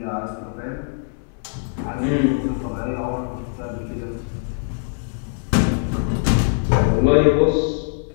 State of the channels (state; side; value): silent; right; digital silence